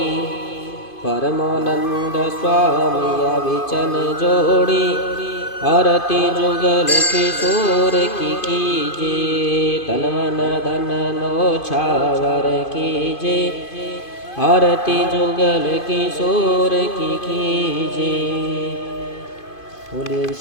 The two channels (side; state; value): right; late; 2.5 ms